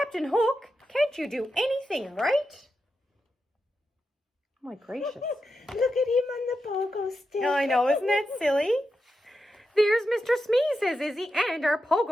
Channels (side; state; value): both; normal; correlation 0.88